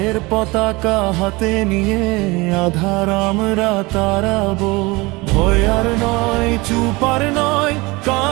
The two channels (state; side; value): quieter; left; 23.7 dB